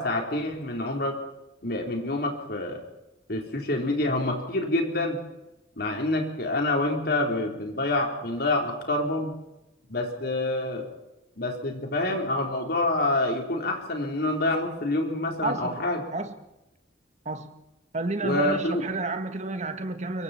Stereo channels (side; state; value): both; normal; correlation 0.03